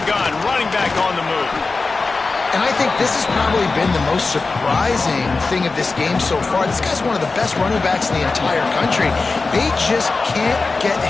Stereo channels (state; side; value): quieter; right; 3.9 dB